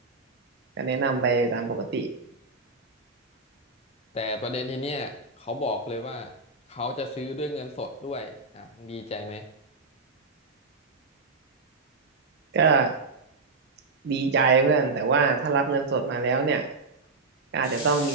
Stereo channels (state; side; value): quieter; left; 3.8 dB